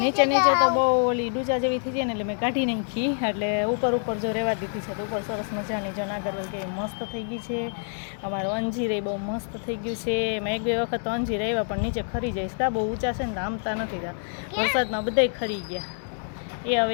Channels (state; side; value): silent; right; 61 dB below the other